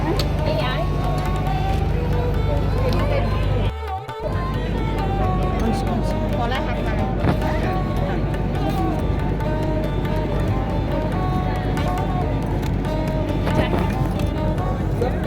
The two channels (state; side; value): identical; both; correlation 1.00